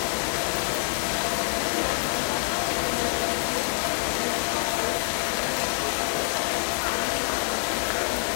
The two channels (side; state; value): right; silent; 61 dB below the other